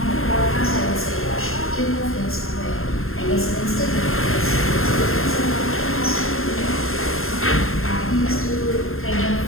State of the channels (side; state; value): right; late; 0.61 ms